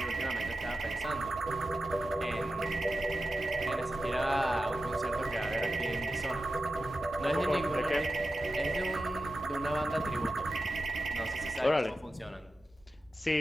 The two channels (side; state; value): both; normal; correlation 0.92